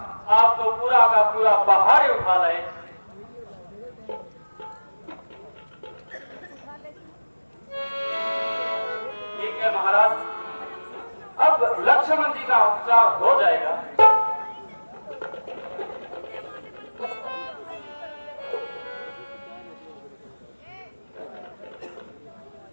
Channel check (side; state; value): both; inverted; correlation -1.00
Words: आप तो पूरा का पूरा पहाड़ ही उठा लाए। ठीक है महाराज, अब लक्ष्मण जी का उपचार हो जाएगा।